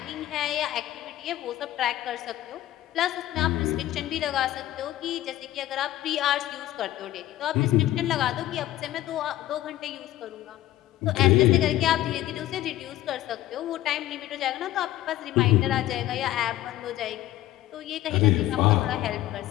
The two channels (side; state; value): right; quieter; 14.6 dB